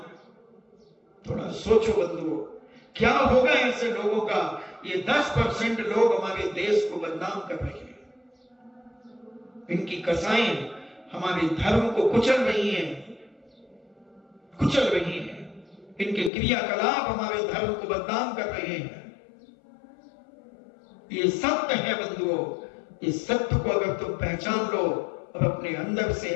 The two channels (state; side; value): drops out; right; at 16.3 s